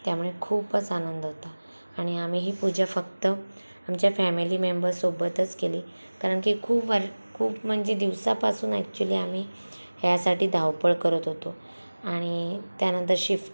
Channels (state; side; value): inverted; both; correlation -1.00